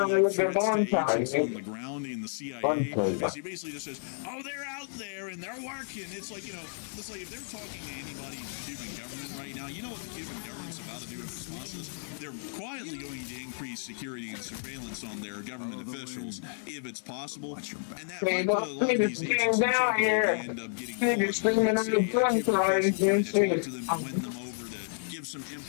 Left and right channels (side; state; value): right; silent; 57 dB below the other